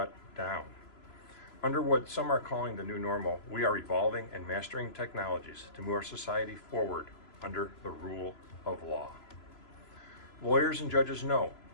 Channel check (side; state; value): right; late; 3.0 ms